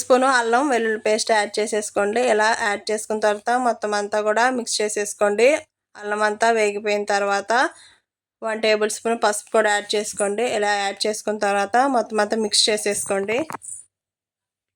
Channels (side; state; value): both; identical; correlation 1.00